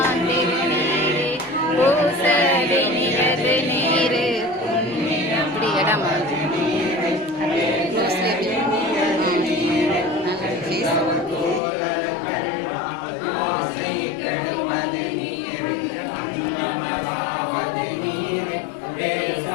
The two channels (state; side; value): drops out; right; at 11.6 s